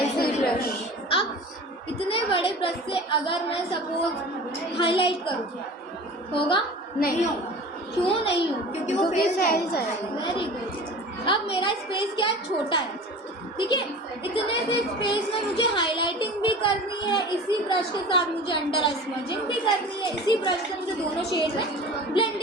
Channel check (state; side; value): normal; both; correlation 0.39